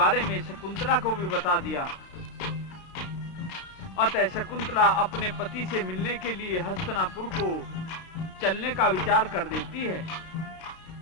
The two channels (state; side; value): late; right; 33 ms